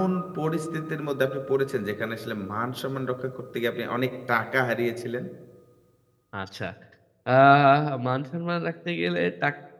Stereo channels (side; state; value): both; identical; correlation 1.00